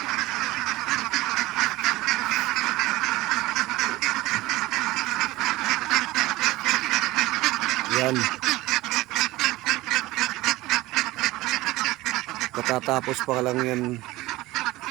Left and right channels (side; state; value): left; quieter; 18.8 dB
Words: Yan. Katatapos pa lang yan